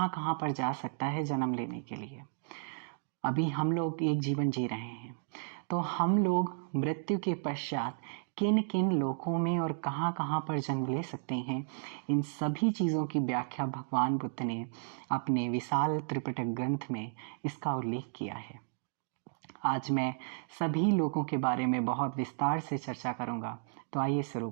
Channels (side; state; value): left; silent; digital silence